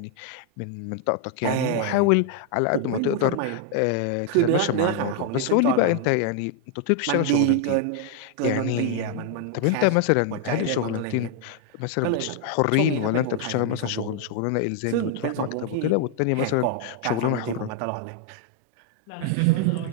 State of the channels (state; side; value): different; both; correlation 0.00